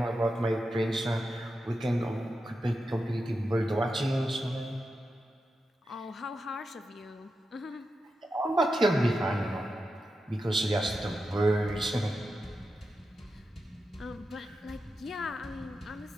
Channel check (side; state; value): both; normal; correlation 0.89